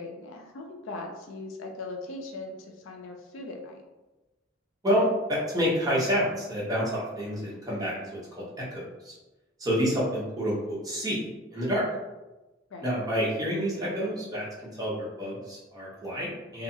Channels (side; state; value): both; normal; correlation 0.35